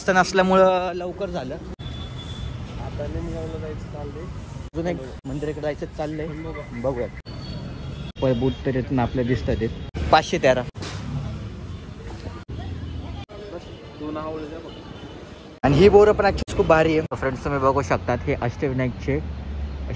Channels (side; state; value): both; identical; correlation 1.00